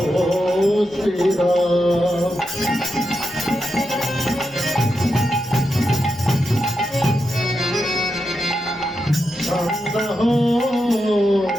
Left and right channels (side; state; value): both; normal; correlation 0.87